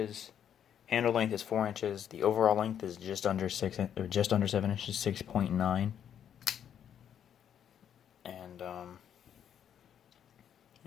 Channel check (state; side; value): quieter; right; 9.2 dB